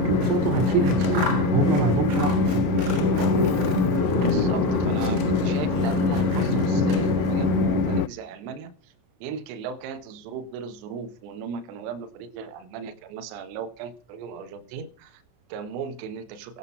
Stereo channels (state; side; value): late; left; 33 ms